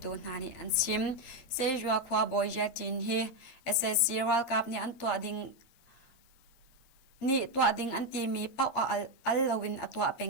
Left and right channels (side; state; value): right; late; 8.5 ms